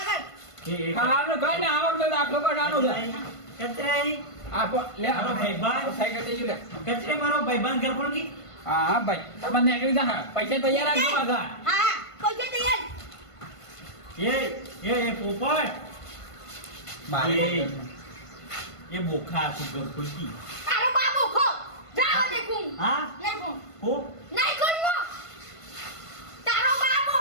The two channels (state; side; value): late; right; 1.5 ms